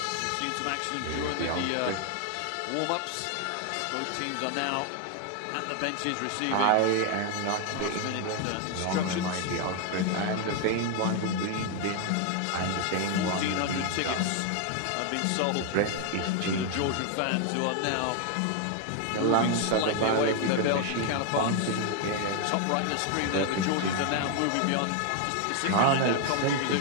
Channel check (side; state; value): both; different; correlation 0.01